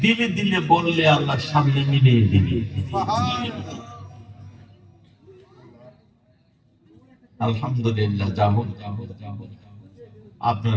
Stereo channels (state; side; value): identical; both; correlation 1.00